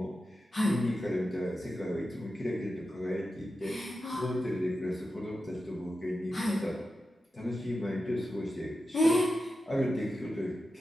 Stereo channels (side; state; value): both; normal; correlation 0.91